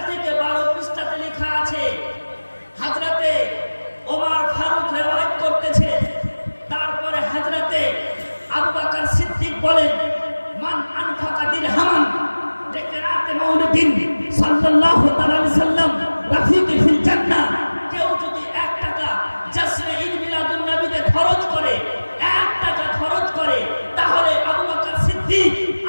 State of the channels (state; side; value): inverted; both; correlation -1.00